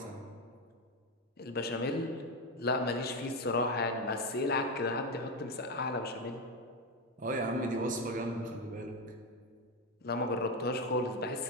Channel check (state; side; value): normal; both; correlation 0.11